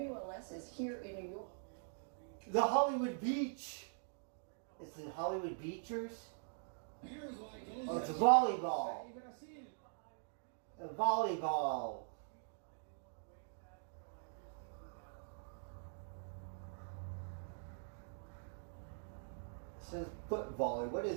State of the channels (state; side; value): silent; left; digital silence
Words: is here in New York. The Hollywood Beach. It's the Hollywood Beachers. Oh, it's a volleyball. A volleyball. It says foot volley. What